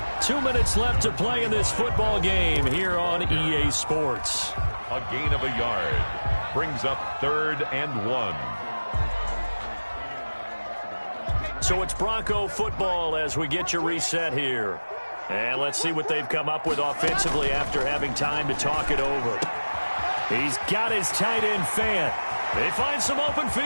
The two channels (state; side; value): inverted; both; correlation -1.00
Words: 2 minutes left to play in this football game here on EA Sports. A gain of a yard. Brings up 3rd and 1. So it's Bronco football as we get you reset here. And let's see what they've come up with offensively after having time to talk it over. He's got his tight end Fant. They find some open